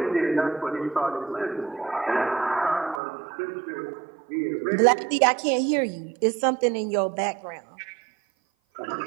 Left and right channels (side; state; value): left; drops out; at 3.0 s